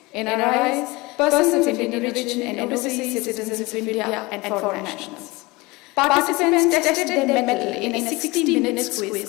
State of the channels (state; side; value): quieter; right; 23.0 dB